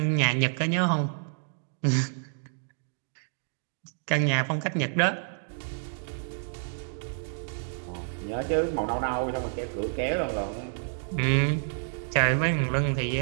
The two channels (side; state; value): left; silent; digital silence